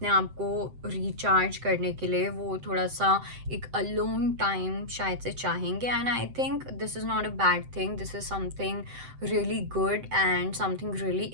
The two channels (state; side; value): late; left; 7.8 ms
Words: आप को रिचार्ज करने के लिए वो थोड़ा सा एक अलोन टाइम शायद से चाहेंगे। And I think this is not a bad thing, this is something really good and something really